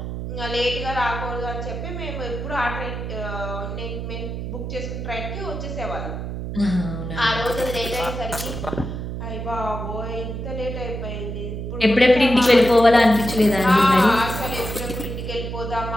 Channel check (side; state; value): right; noise; hum, 5 dB below the sound